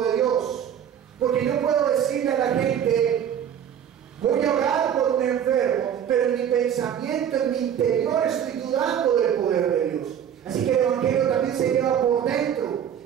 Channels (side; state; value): left; quieter; 9.2 dB